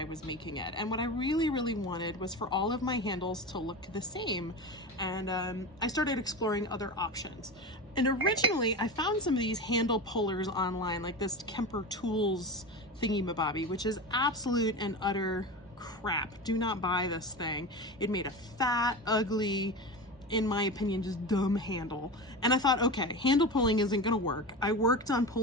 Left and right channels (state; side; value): normal; both; correlation 0.26